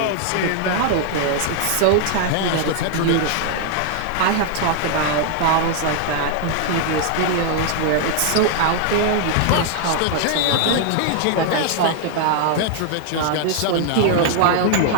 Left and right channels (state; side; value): different; both; correlation 0.00